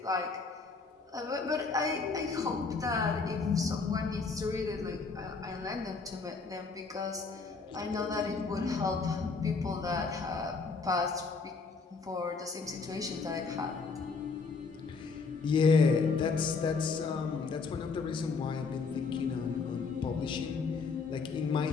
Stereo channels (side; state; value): right; quieter; 4.6 dB